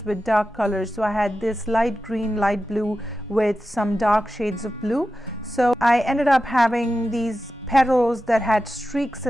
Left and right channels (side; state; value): both; normal; correlation 0.92